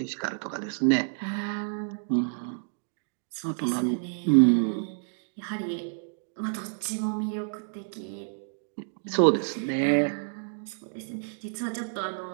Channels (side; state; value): left; silent; digital silence